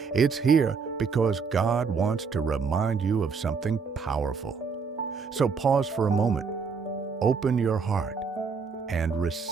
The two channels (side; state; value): left; quieter; 5.5 dB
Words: It's here because God wants to remind you of something powerful. So pause for a moment, open your heart, and